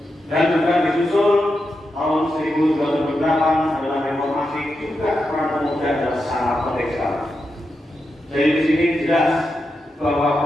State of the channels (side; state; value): both; normal; correlation 0.87